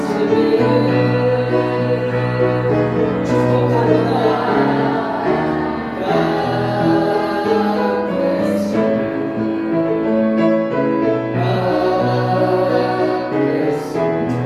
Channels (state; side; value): identical; both; correlation 1.00